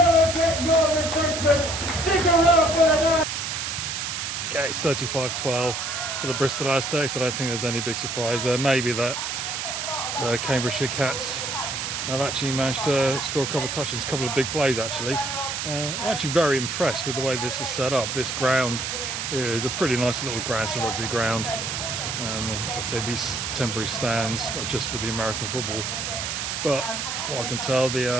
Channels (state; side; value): noise; right; hiss, 3 dB below the sound